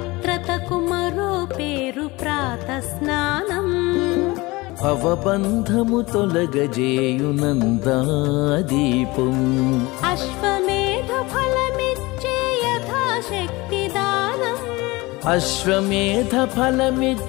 మరో పేరు ప్రాతస్నానం భవబంధము తొలగజేయునందాదీపం అశ్వమేధ ఫలమిచ్చే యథాశక్తి దానం అశ్వమేధ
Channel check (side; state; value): right; quieter; 22.3 dB